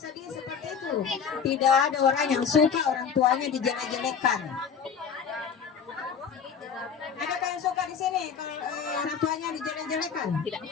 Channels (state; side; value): quieter; right; 6.8 dB